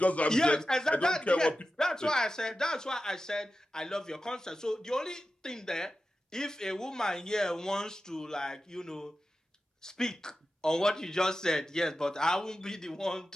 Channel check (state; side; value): normal; both; correlation 0.93